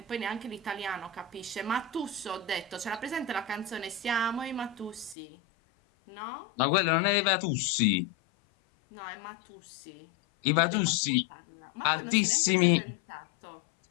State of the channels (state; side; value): drops out; right; at 5.2 s